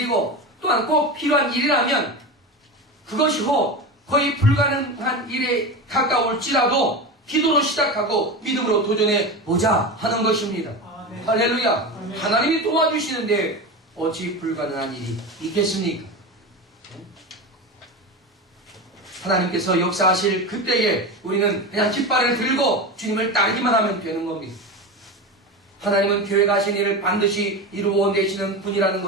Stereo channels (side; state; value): both; normal; correlation 0.23